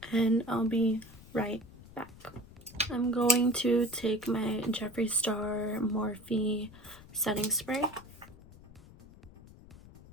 and I'll be right back. I'm going to take my Jeffree Star Morphe setting spray.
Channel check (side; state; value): left; noise; rumble, 20 dB below the sound